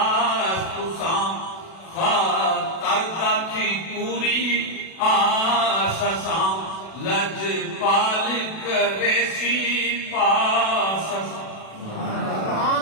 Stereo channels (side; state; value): right; late; 36 ms